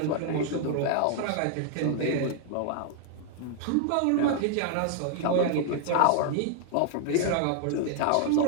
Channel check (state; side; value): different; both; correlation 0.00